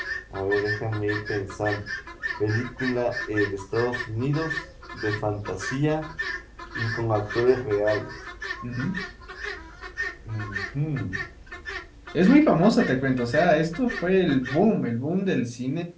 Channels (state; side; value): identical; both; correlation 1.00